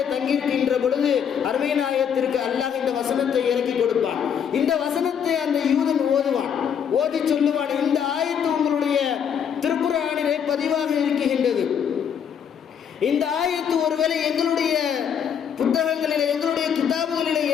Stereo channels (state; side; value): quieter; right; 7.9 dB